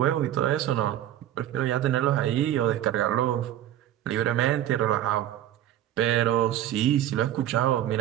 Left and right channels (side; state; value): left; quieter; 12.1 dB